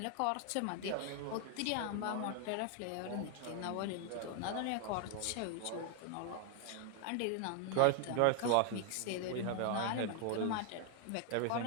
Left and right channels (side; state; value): both; different; correlation 0.00